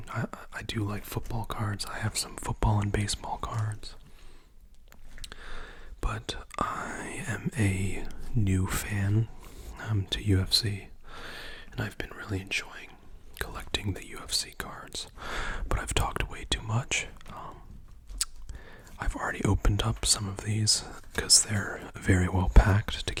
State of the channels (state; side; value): identical; both; correlation 1.00